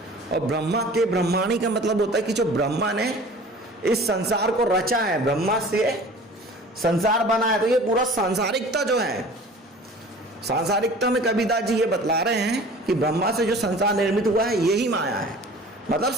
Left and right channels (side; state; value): both; normal; correlation 0.44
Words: और ब्रह्मा के ब्रह्माणी का मतलब होता है कि जो ब्रह्मा ने इस संसार को रचा है, ब्रह्मा से संसार बना है, तो ये पूरा सांसारिकता जो है, सांसारिकता में कबीरदास जी ये बतला रहे हैं कि ब्रह्मा से जो संसार निर्मित हुआ है यही माया है, मतलब